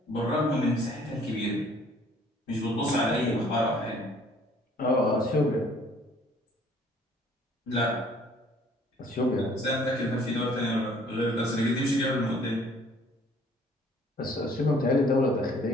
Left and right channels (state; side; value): normal; both; correlation 0.57